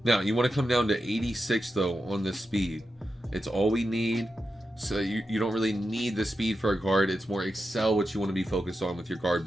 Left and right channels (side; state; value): both; normal; correlation 0.89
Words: you want to come down to 86 though on the speed. It's all we need. So you don't really need the speed for a guard. It's more excel what you want to be focused on with your guard